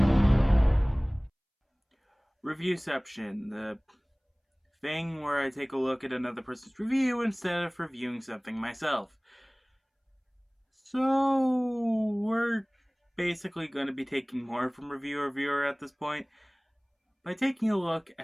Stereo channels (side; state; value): both; identical; correlation 1.00